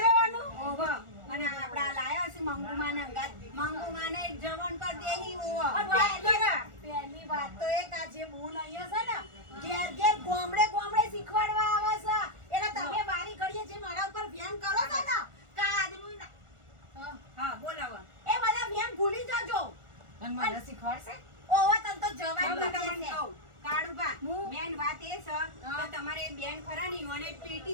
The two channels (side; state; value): left; late; 1.4 ms